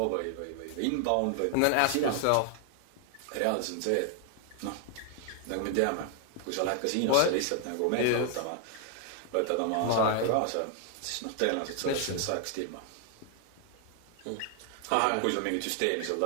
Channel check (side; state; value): both; different; correlation 0.00